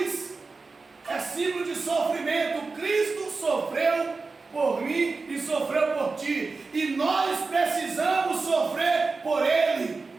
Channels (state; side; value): quieter; left; 4.1 dB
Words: é símbolo de sofrimento. Cristo sofreu por mim e sofreu por ti, e nós precisamos sofrer por Ele.